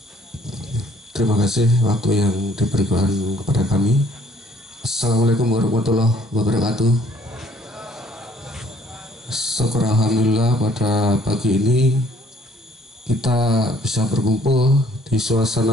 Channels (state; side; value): normal; both; correlation 0.60